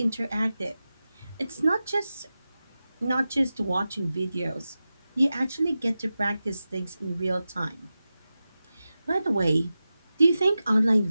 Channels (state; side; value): inverted; both; correlation -0.94